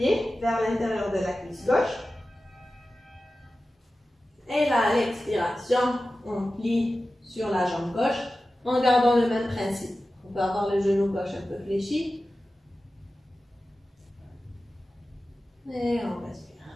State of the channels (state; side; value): normal; both; correlation 0.94